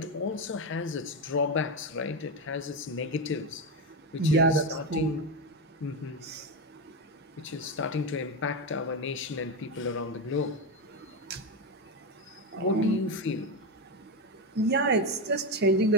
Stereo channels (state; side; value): normal; both; correlation 0.11